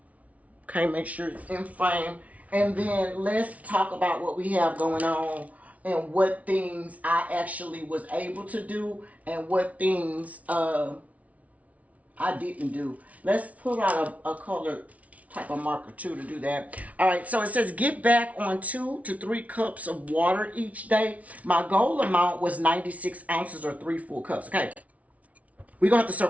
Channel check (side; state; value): left; late; 0.068 ms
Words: Okay, make sure it's in frame. And then let's talk about what we have going on and what things I actually was able to do and what things I didn't do. Let's pull out a color type of marker too to do that. All right, so it says get back on 2 to 3 cups of water each day. My goal amount was 96 ounces or 3 full cups. Okay, we're gonna have to